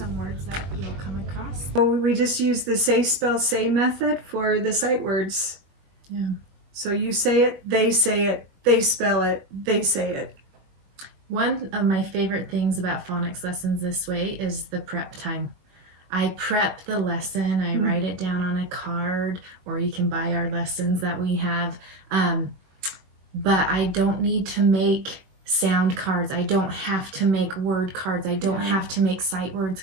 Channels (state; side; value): late; left; 21 ms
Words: words that you'll come across. So we just use the say, spell, say method for the sight words. Yeah. So you say it, they spell it, they say it. One of my favorite things about phonics lessons this way is the prep time. I prep the lesson, I write it down on a card, or you can buy our lessons that we have. But I don't need to make sound cards. I don't have to make word cards. I don't have to make sight words